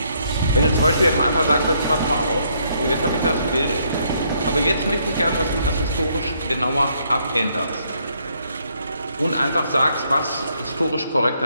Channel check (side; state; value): both; inverted; correlation -0.71